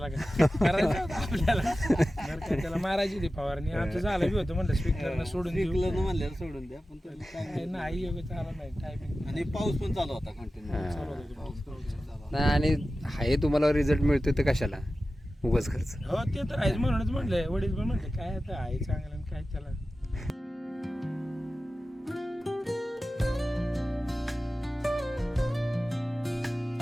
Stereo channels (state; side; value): normal; both; correlation 0.94